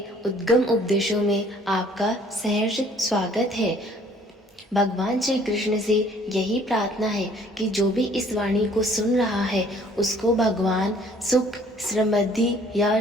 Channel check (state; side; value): normal; both; correlation 0.57